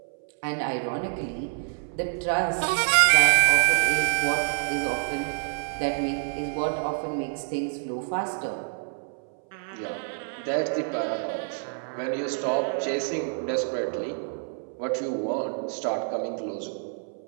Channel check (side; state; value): left; silent; 59 dB below the other